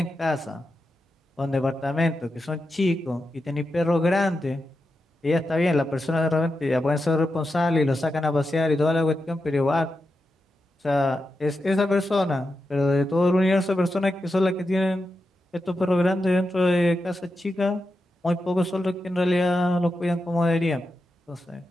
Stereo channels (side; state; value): both; normal; correlation 0.89